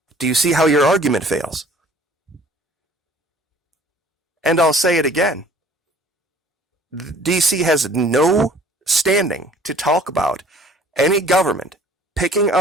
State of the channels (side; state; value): both; normal; correlation 0.53